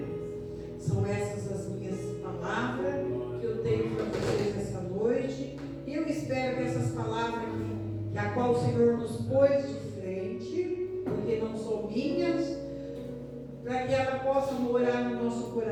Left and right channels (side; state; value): both; identical; correlation 1.00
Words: São essas as minhas palavras que eu tenho para vocês essa noite. E eu espero que essas palavras que a qual o Senhor nos pôs de frente, porque não são minhas, para que ela possa morar no nosso